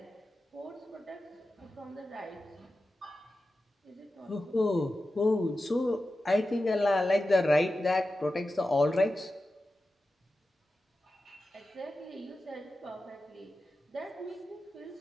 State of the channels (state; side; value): normal; both; correlation 0.93